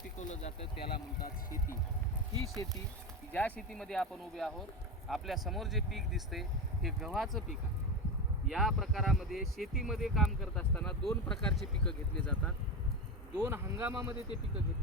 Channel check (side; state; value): both; normal; correlation 0.19